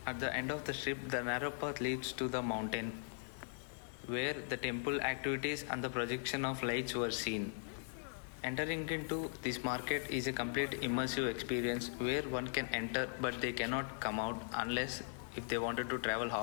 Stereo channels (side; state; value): right; silent; digital silence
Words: At the end of the strip, the narrow path leads to the mountain, where the temple activities and the projection of lights were seen. Entering into this market is a complete immersive experience where one can enter but they cannot come out unless if they wanted to travel